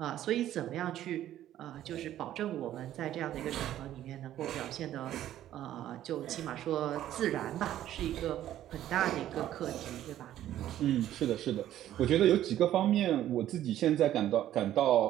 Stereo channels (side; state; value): left; quieter; 12.4 dB